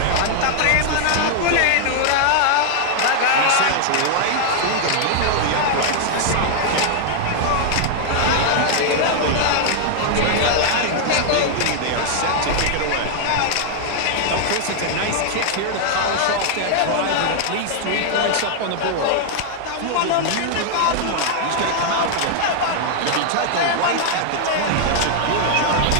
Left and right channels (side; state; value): both; different; correlation -0.01